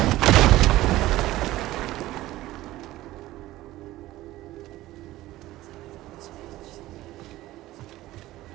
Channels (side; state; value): left; quieter; 16.4 dB